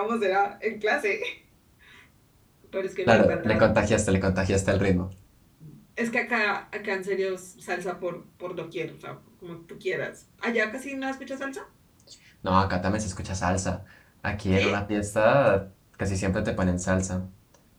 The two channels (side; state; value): both; identical; correlation 1.00